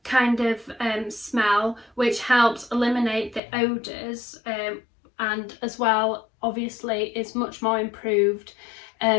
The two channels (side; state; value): right; drops out; at 3.4 s